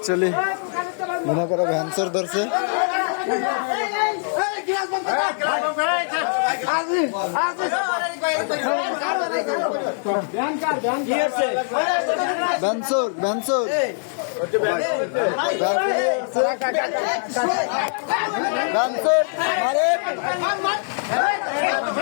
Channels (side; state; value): right; silent; digital silence